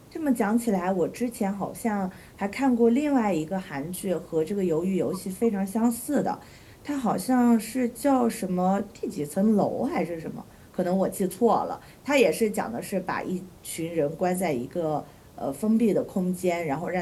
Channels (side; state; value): both; identical; correlation 1.00